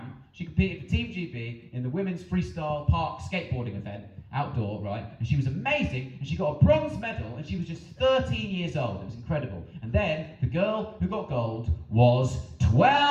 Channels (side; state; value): both; identical; correlation 1.00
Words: she competed for Team GB in the women's freestyle park skateboarding event, outdoor, right, and she was amazing, and she got a bronze medal, and she was just 13 years old. It was incredible. And then the girl who got gold was